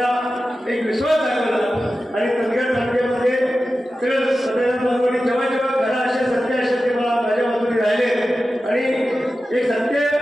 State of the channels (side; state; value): both; normal; correlation 0.93